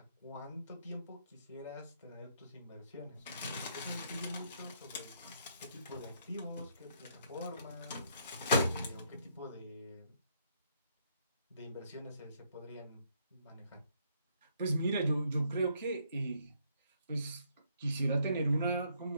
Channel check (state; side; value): inverted; both; correlation -0.70